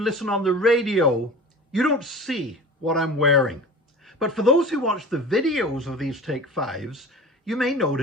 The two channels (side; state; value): both; normal; correlation 0.36